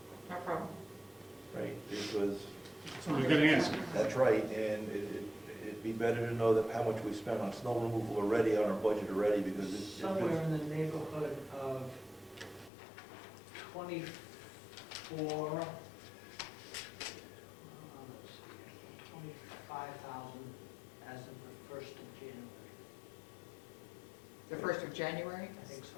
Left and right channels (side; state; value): right; drops out; at 12.7 s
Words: no problem. right? Because So we're going to answer. that's right, and it'd be better to know that how much we spent on snow removal already, on our budget already, because it Somewhere feels- in the neighborhood of 24, let's see, 25,000 as of the 1st of January. The 1st of January? I think so.